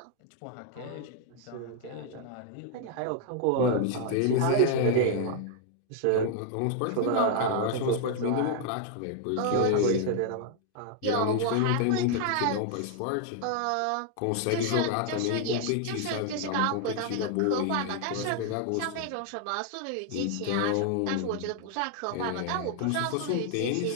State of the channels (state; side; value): different; both; correlation 0.00